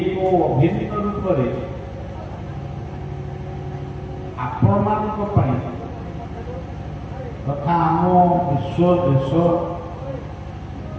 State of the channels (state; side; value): identical; both; correlation 1.00